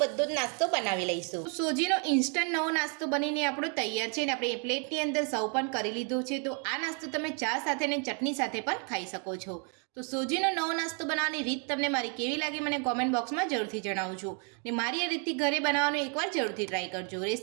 બધો જ નાસ્તો બનાવી લઈશું। સોજીનો ઇન્સ્ટન્ટ નવો નાસ્તો બનીને આપણો તૈયાર છે અને આપણે એ પ્લેટની અંદર સર્વ પણ કરી લીધું છે। તો આ નાસ્તો તમે ચા સાથે અને ચટણી સાથે પણ ખાઈ શકો છો। તો સોજીનો નવો નાસ્તો બનાવવાની રીત તમને મારી કેવી લાગી મને કોમેન્ટ બોક્સમાં જરૂરથી જણાવજો અને મારી આ રીતથી ઘરે બનાવવાનું એકવાર જરૂરથી ટ્રાય કરજો।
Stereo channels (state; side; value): quieter; left; 39.0 dB